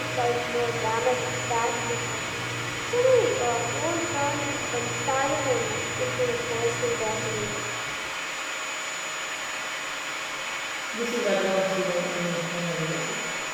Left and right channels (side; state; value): both; identical; correlation 1.00